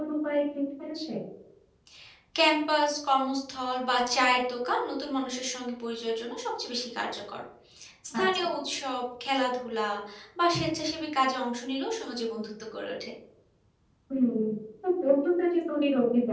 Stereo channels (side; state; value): both; identical; correlation 1.00